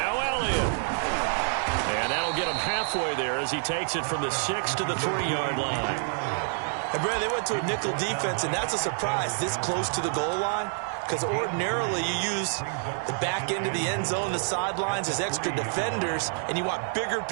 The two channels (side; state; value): left; silent; digital silence